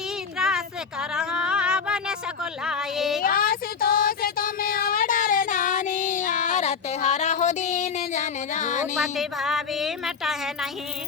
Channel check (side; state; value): right; quieter; 6.0 dB